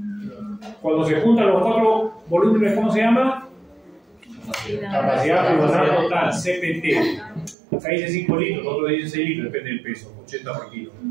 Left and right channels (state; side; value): drops out; left; at 7.6 s